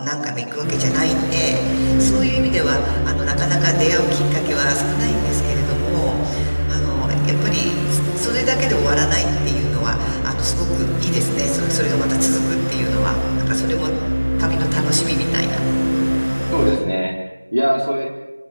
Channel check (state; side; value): inverted; both; correlation -1.00